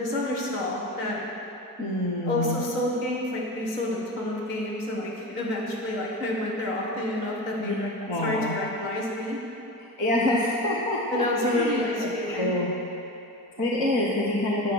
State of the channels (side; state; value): left; late; 4.5 ms